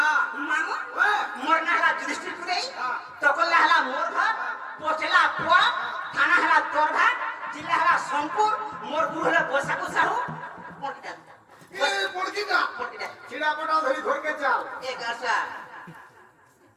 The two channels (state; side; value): identical; both; correlation 1.00